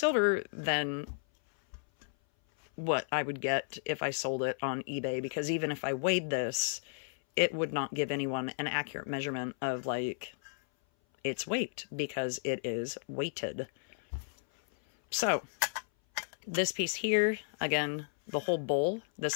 than what I would get if I sold it on eBay, because even if I weighed this, it would not give anyone an accurate measurement of like its weight, because it is weighted. So this piece here, again, the whole bowl,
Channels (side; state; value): right; silent; 56 dB below the other